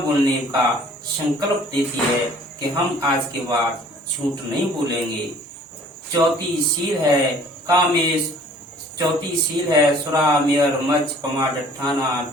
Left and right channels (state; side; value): normal; both; correlation 0.53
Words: बोलने का संकल्प देती है कि हम आज के बाद झूठ नहीं बोलेंगे। चौथी शील है कामेश। चौथी शील है सुरा मेयर मच पमा डठाना